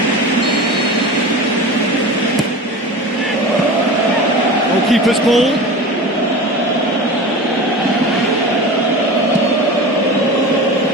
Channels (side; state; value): both; normal; correlation 0.32